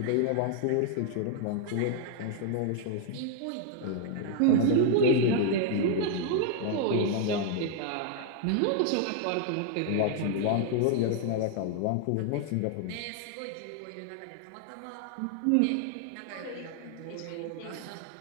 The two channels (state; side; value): different; both; correlation 0.00